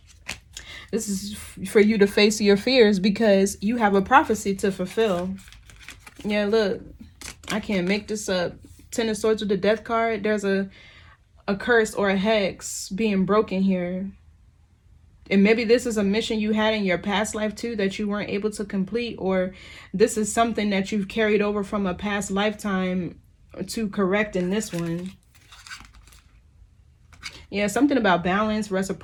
This is for you to face your fears because you have a prophecy to fulfill. Yeah, look, I can't make this up. Ten of Swords with the Death card. There's a curse or a hex being broken here. And maybe this is a mission you had in your past life too that you weren't able to complete, or this is something that you've carried over from a past lifetime to correct in this one. Yeah, something about balance,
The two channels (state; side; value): identical; both; correlation 1.00